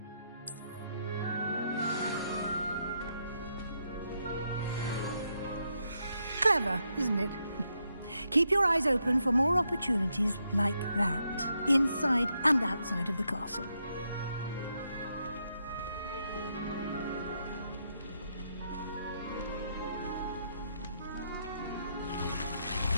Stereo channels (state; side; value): inverted; both; correlation -0.79